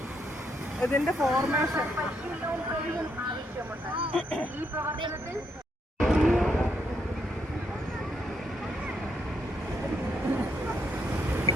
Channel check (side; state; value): both; normal; correlation 0.76